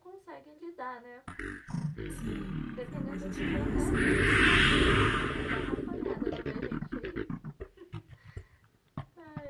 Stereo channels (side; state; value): both; identical; correlation 1.00